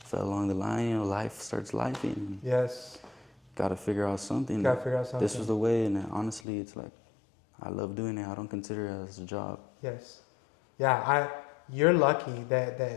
along the line, you know. Life starts lifing. Got to figure out something. This was the way, and honestly, it's like, I love doing it. I don't consider it as a job. You're lucky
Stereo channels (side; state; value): right; drops out; at 6.4 s